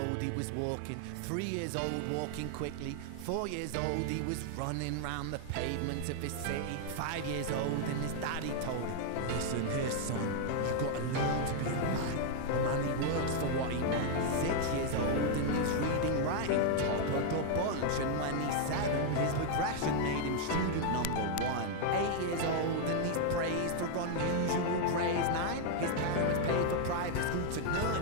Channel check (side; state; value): both; different; correlation 0.00